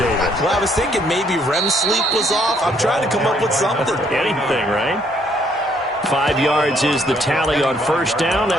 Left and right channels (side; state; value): both; normal; correlation 0.67